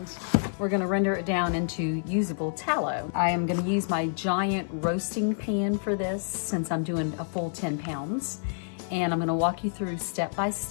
we're going to render it down into usable tallow. I am going to use my giant roasting pan for this since I'm doing a full 10 pounds. And I'm going to walk you through step by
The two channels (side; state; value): right; silent; 59 dB below the other